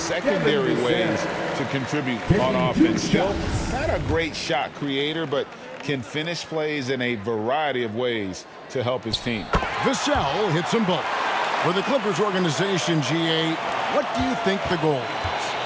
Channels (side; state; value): both; identical; correlation 1.00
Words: ways to contribute on offense. Still not a great shot creator, but can finish plays in a variety of ways to help his team. Vassell hits them both. For the Clippers organization, GA, what do you think the goal is?